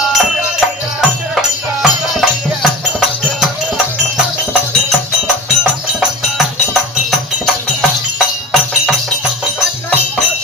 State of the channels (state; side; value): normal; both; correlation 0.34